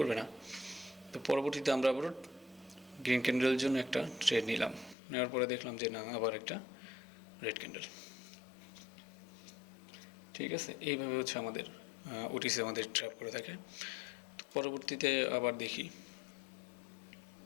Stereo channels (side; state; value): right; drops out; at 5.0 s